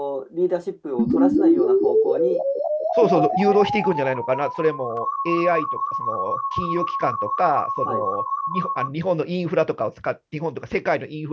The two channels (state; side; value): identical; both; correlation 1.00